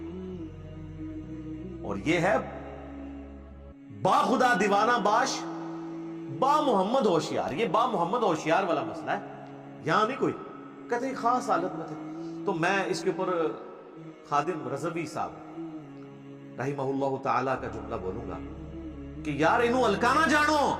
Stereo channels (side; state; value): both; identical; correlation 1.00